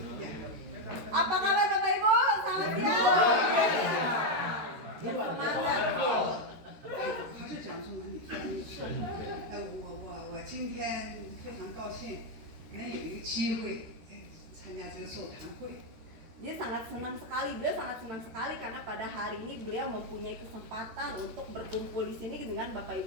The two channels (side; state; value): left; late; 13 ms